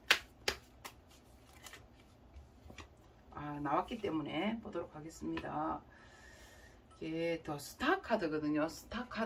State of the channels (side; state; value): both; identical; correlation 1.00